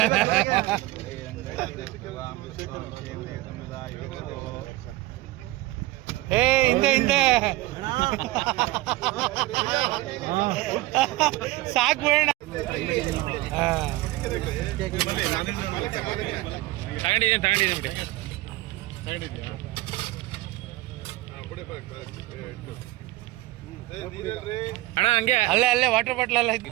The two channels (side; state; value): left; quieter; 18.5 dB